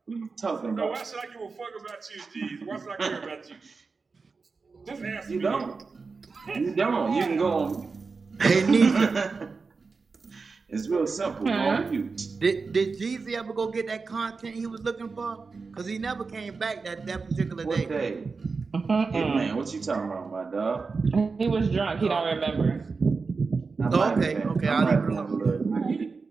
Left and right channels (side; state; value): left; quieter; 4.5 dB